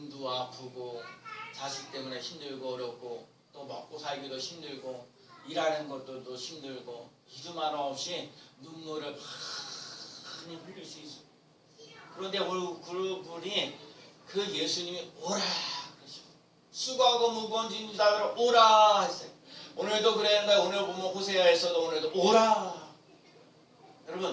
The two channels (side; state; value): both; identical; correlation 1.00